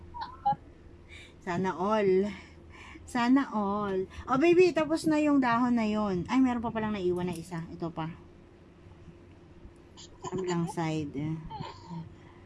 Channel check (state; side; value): identical; both; correlation 1.00